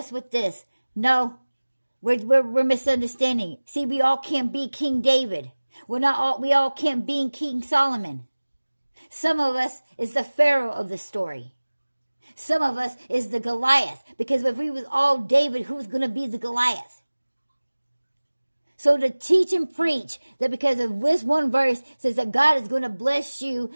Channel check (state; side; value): inverted; both; correlation -1.00